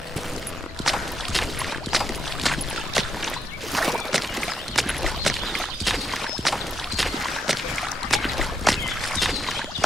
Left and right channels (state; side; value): normal; both; correlation 0.80